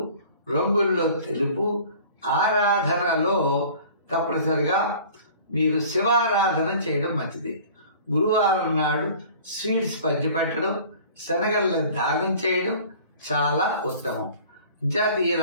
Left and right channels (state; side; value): inverted; both; correlation -0.47